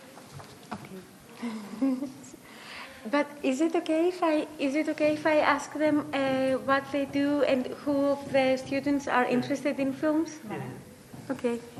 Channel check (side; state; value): both; identical; correlation 1.00